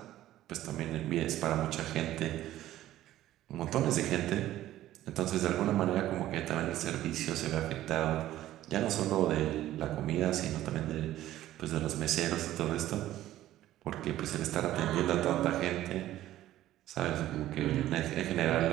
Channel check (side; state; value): left; quieter; 14.0 dB